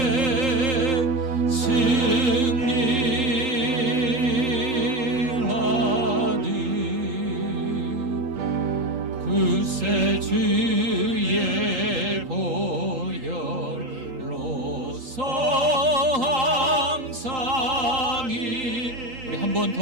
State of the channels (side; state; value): left; late; 8.5 ms